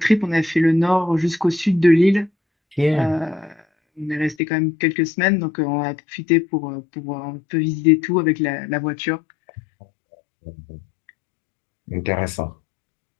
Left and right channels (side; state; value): right; drops out; at 4.4 s